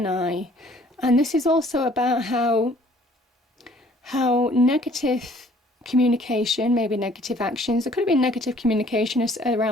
And this is also about how negative communication, maybe negative actions, there could have been negative communication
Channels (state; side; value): normal; both; correlation 0.58